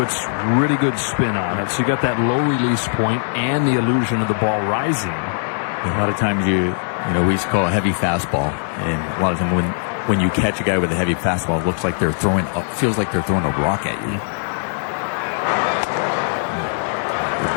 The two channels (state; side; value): silent; right; digital silence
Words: really good spin on it. So you got that low release point and the illusion of the ball rising. A lot of times we used to call a heavy fastball, and a lot of them when you catch a guy with a heavy fastball, it looks like they're throwing feels like they're throwing a rock at you. The